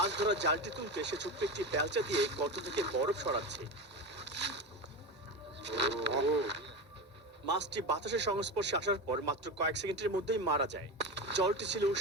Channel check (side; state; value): both; normal; correlation 0.22